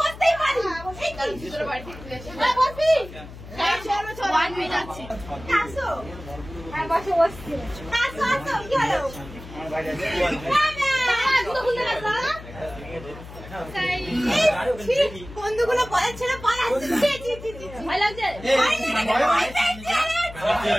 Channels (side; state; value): left; noise; hum, 15 dB below the sound